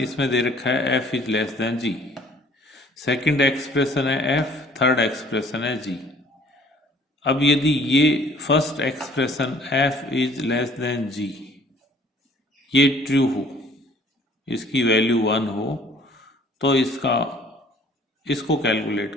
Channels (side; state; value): both; normal; correlation 0.55